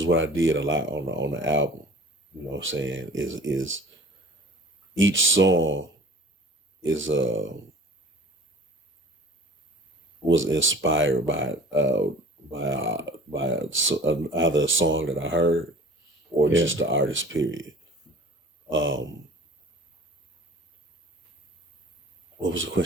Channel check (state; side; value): normal; both; correlation 0.45